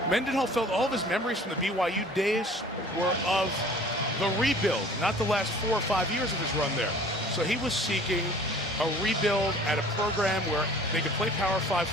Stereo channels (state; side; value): normal; both; correlation 0.48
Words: Mendenhall felt all of his memories from the BYU days were of the rebuild, not the last 4 or 5 years of his run there. So he was seeking a rebuild at a program where they could play Power 5